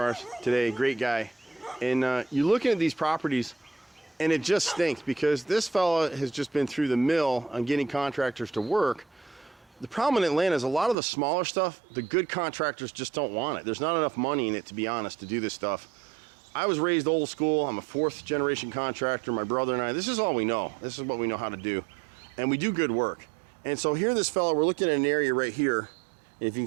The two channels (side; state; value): left; drops out; at 11.0 s